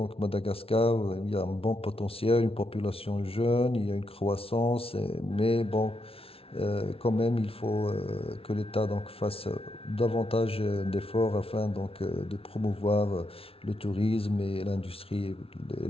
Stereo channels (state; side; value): late; right; 0.27 ms